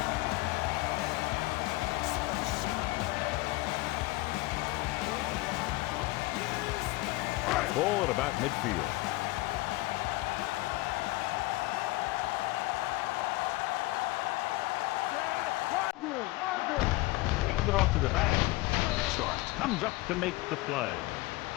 Ball at about midfield. Hands it off to the back. Starks comes up to make the play.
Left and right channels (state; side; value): quieter; right; 20.6 dB